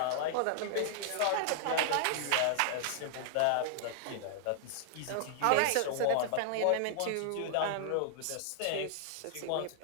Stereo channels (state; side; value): different; both; correlation -0.01